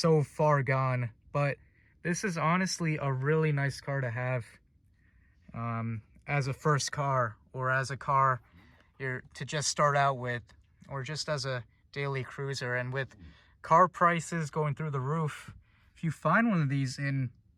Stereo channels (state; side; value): identical; both; correlation 1.00